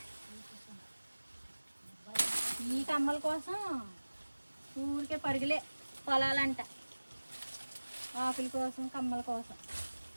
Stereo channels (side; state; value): both; inverted; correlation -1.00